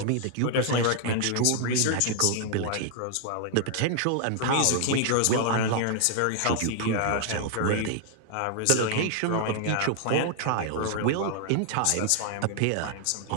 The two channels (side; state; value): both; different; correlation 0.00